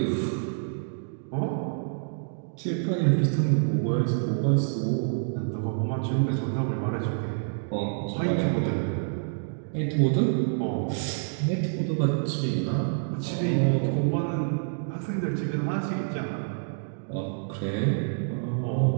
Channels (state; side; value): silent; left; digital silence